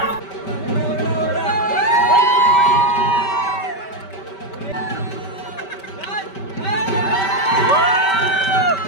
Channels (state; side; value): late; right; 5.2 ms